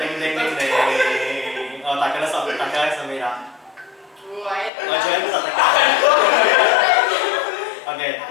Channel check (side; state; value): right; drops out; at 4.7 s